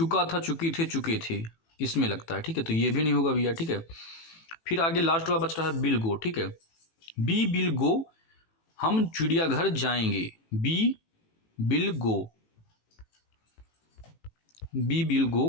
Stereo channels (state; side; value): late; right; 18 ms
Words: था, चुकी थे, चुके थे, इसमें लगता है, ठीक है। तो ये भी नहीं होगा भैया, ठीक है। फिर आगे लास्ट वाला बच रहा है बिल गो, ठीक है। बी विल गो, हम चिड़ियाघर जाएंगे। We will go, we will go